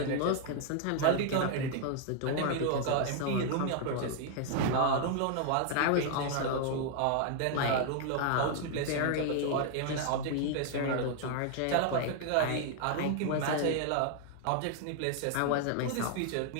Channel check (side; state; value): both; different; correlation 0.00